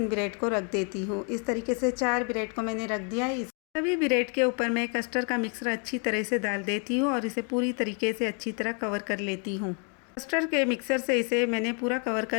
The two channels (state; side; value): quieter; right; 38.9 dB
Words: ब्रेड को रख देती हूँ। इस तरीके से 4 ब्रेड को मैंने रख दिया है। सभी ब्रेड के ऊपर मैं कस्टर्ड का मिक्सर अच्छी तरह से डाल देती हूँ और इसे पूरी तरीके से अच्छी तरह कवर कर लेती हूँ। कस्टर्ड के मिक्सर से इसे मैंने पूरा कवर